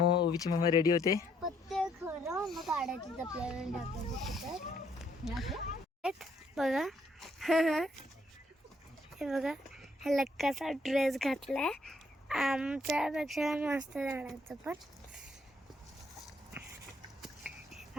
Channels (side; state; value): both; normal; correlation 0.69